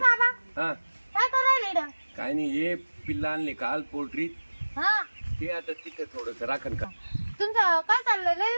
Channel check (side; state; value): both; inverted; correlation -1.00